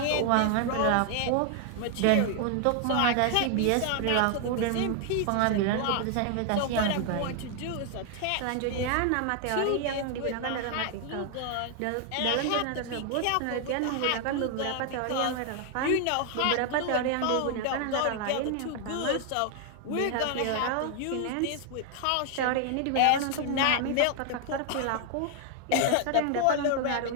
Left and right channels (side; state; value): both; different; correlation 0.00